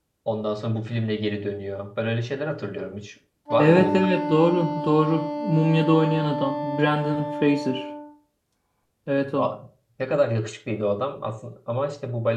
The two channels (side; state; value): both; identical; correlation 1.00